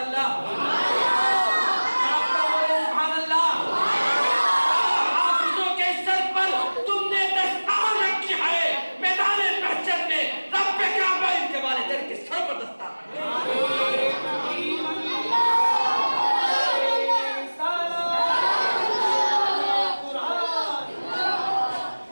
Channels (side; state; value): both; inverted; correlation -1.00